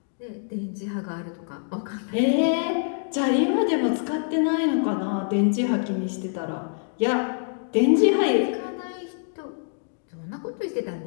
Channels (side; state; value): right; silent; digital silence